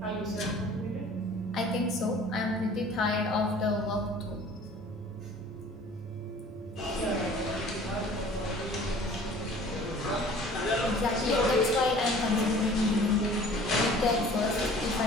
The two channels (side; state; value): both; normal; correlation 0.49